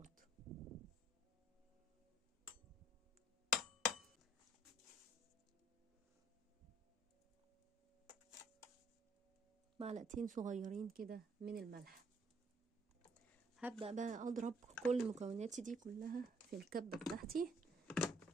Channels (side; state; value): both; normal; correlation 0.62